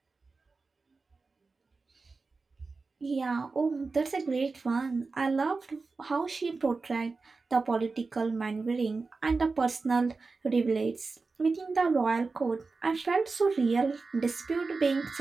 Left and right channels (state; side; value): quieter; left; 4.1 dB